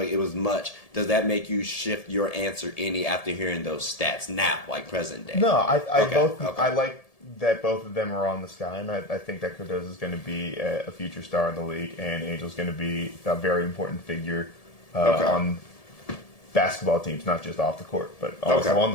it was much. Does that make you shift your answer any after hearing those stats now, like present day? No, I like that both of them are on the Sky, and I think that Cardozo is going to be a future star in the league, and Angel's going to be a very important figure on basketball teams, not just off the court, but also on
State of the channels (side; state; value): right; late; 1.7 ms